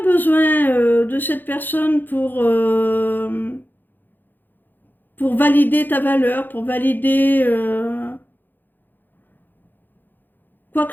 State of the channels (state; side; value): late; right; 0.089 ms